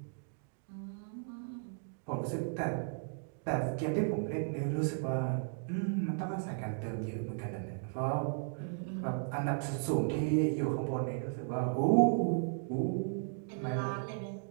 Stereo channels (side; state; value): left; silent; digital silence